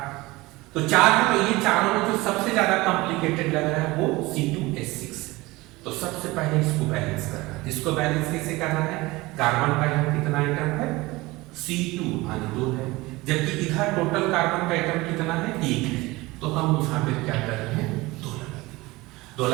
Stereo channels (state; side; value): quieter; left; 21.1 dB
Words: तो 4 है तो ये चारों में जो सबसे ज्यादा कॉम्प्लिकेटेड लग रहा है वो C2H6 है। तो सबसे पहले इसको बैलेंस करना है। इसको बैलेंस कैसे करना है कार्बन का यहाँ कितना आइटम है C2 माने 2 है, जबकि इधर टोटल कार्बन का आइटम कितना है 1 है। तो हम यहाँ पे क्या कर रहे हैं 2 लगा देंगे। 2